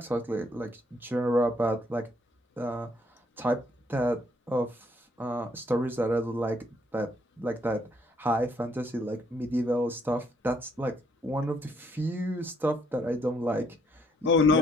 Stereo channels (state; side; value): normal; both; correlation 0.69